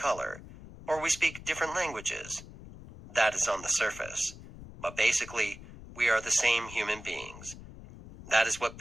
or we speak different languages. That is on the surface. But basically, we are the same human beings. That is what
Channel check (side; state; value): left; noise; rumble, 16 dB below the sound